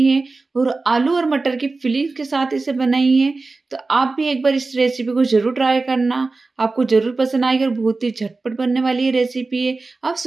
है और आलू और मटर की फिलिंग के साथ इसे बनाई है। तो आप भी एक बार इस रेसिपी को जरूर ट्राई करना, आपको जरूर पसंद आएगी और बहुत ही झटपट बनने वाली ये रेसिपी है। आप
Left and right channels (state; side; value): quieter; left; 3.6 dB